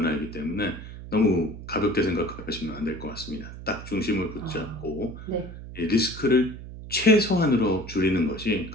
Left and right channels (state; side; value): noise; right; hum, 12 dB below the sound